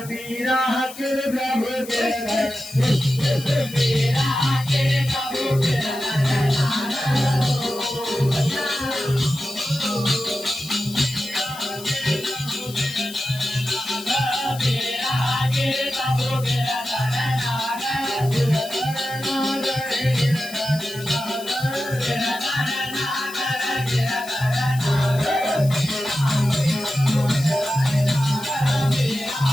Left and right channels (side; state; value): left; noise; hiss, 15 dB below the sound